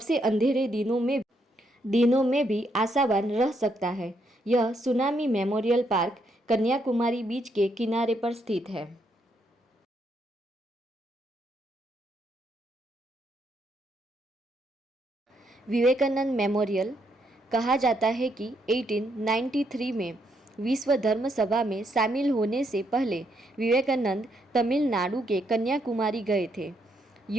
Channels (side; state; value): both; normal; correlation 0.76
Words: अंधेरे दिनों में भी आशावान रह सकता है। यह सुनामी मेमोरियल पार्क कन्याकुमारी बीच के किनारे पर स्थित है। विवेकानंद मेमोरियल। कहा जाता है कि 1893 में विश्व धर्म सभा में शामिल होने से पहले विवेकानंद तमिलनाडु के कन्याकुमारी गए थे।